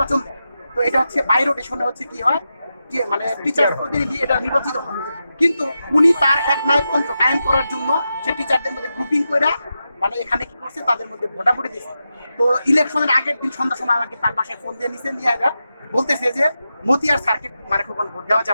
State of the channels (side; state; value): both; inverted; correlation -0.89